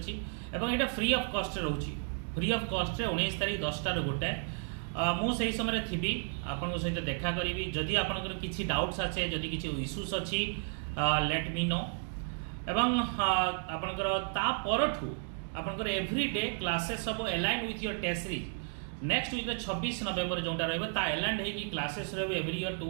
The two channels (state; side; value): silent; left; 56 dB below the other